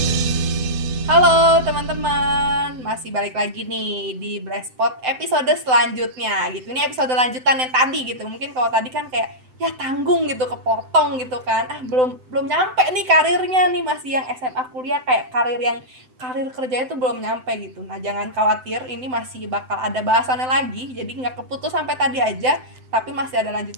teman-teman, masih balik lagi nih di Blastpot episode selanjutnya gitu. Ini episode lanjutan yang tadi gitu. Mungkin kalau tadi kan kayak ya tanggung gitu, kepotong gitu kan. Belum nyampe nih karirnya nih, masih yang SMA kuliah, kayak karir kerjanya tuh belum nyampe gitu. Nah, jangan khawatir, ini masih bakal ada bahasannya lagi. Jadi nggak keputus sampai tadi aja, tapi masih ada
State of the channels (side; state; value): left; late; 7.8 ms